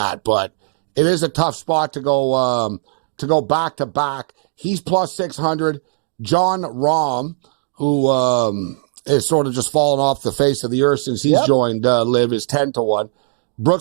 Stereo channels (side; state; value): left; silent; digital silence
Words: But it is a tough spot to go back to back. He's plus 600. John Rahm, who is sort of just fallen off the face of the earth since he's joined Live, is 10-1.